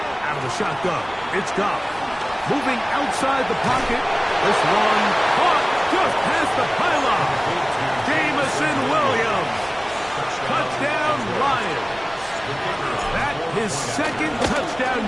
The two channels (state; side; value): noise; right; rumble, 21 dB below the sound